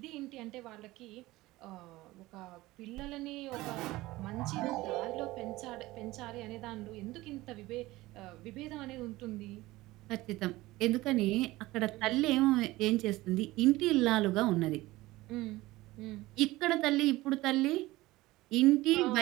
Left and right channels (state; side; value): quieter; left; 18.8 dB